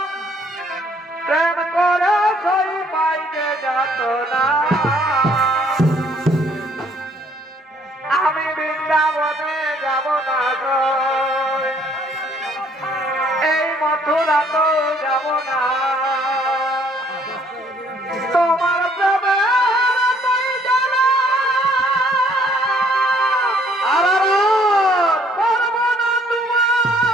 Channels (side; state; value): both; normal; correlation 0.62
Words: ছাড়া তো যাব না তোমার প্রেমে তুই জানা আর করব না তোমার